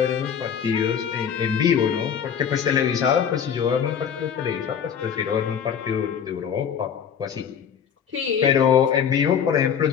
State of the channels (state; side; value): quieter; right; 7.8 dB